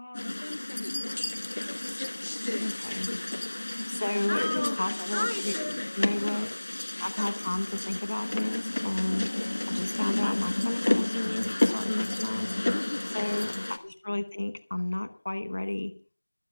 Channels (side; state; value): both; inverted; correlation -1.00